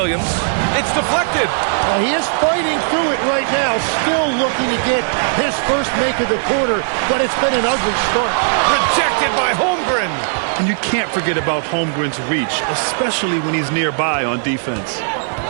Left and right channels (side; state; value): left; silent; digital silence